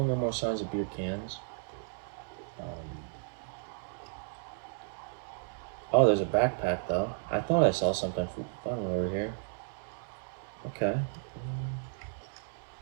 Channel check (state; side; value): silent; left; digital silence